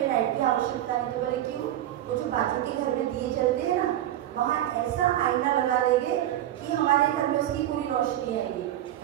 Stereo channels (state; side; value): quieter; left; 12.8 dB